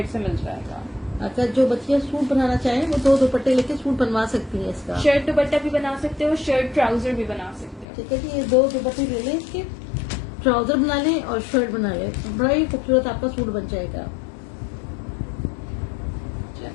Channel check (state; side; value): drops out; right; at 7.9 s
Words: से मिल जाएगा। अगर जो बच्चियां सूट बनाना चाहें वो 2 दुपट्टे लेके सूट बनवा सकती हैं इसका। शर्ट दुपट्टा भी बना सकते हो, शर्ट ट्राउजर भी बना सकते हो। ठीक है जी, ये 2 दुपट्टे ले लें, इसके ट्राउजर बना लें और शर्ट बना लें, बड़ा ही खूबसूरत आपका सूट बन जाएगा।